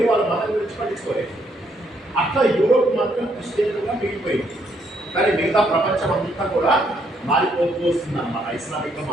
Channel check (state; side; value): normal; both; correlation 0.72